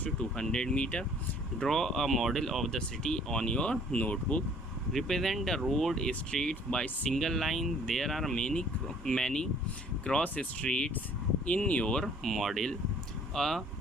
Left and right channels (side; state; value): both; normal; correlation 0.56